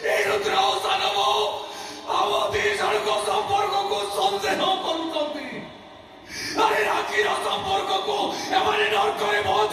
संपर्क को संदेह अरे राखीर संपर्क को एमाने नरकरे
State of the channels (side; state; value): both; identical; correlation 1.00